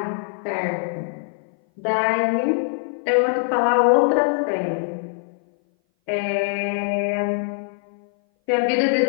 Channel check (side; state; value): right; silent; 58 dB below the other